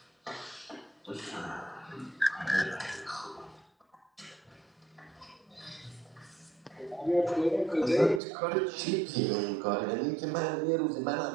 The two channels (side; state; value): left; drops out; at 8.2 s